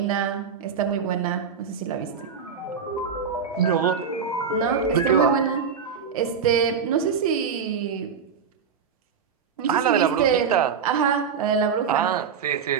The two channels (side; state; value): left; quieter; 6.6 dB